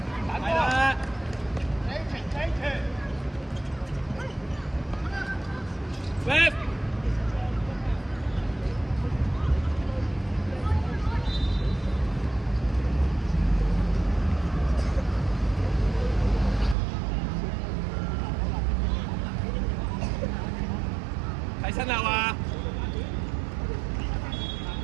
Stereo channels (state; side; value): drops out; left; at 16.8 s